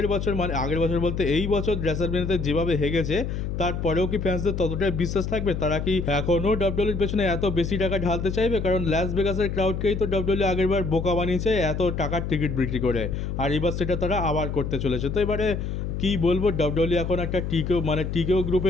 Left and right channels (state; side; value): noise; left; hum, 3 dB below the sound